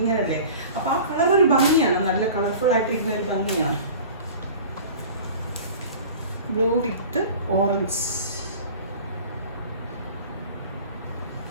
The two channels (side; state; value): both; inverted; correlation -0.41